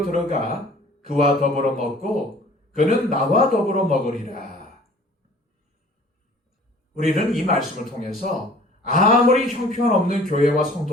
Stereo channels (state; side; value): normal; both; correlation 0.50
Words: 들어가 그와 더불어 먹고 그는 나와 더불어 먹으리라. 우리는 이 말씀을 통해서 아무리 형편없는 교회와